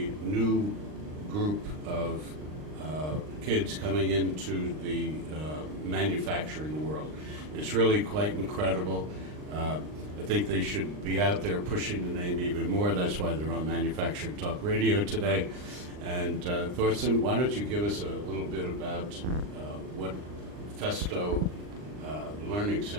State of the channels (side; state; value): left; late; 39 ms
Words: new group of kids coming into the manufacturing world. It's really quite incredible. I think they should be out there pushing the name even more. That's why they're on Manufacturing Talk Radio today. And Torsten, why don't you give us a little bit about what Festo Learning